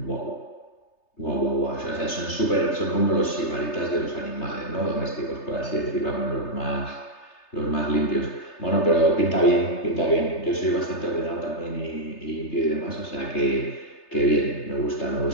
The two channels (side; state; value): right; late; 3.3 ms